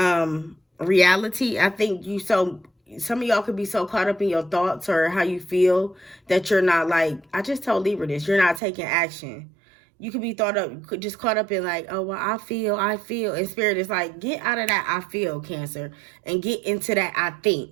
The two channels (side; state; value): left; drops out; at 8.6 s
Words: reality. I think some of y'all could be so caught up in your thoughts or how you feel that you're not like, I just told Libra this, you're not taking action. You could be just caught up in like, oh, well, I feel. And Spirit is like, get out of that I feel, Cancer, and get into that I think.